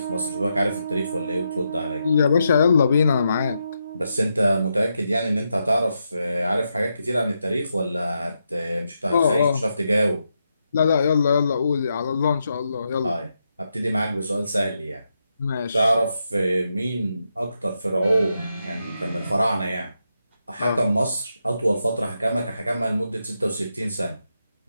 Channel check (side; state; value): both; inverted; correlation -0.84